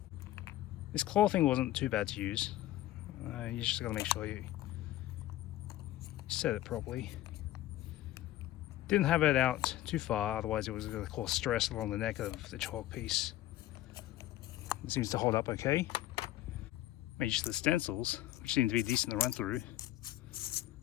This claw thing wasn't too bad to use. You just gotta make sure you set it properly. Didn't have it out too far, otherwise it was going to cause stress along the neck of the chalk piece. It seems to hold up okay. Made use of the stencils, which seem to be decent to run through.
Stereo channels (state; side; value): quieter; right; 14.6 dB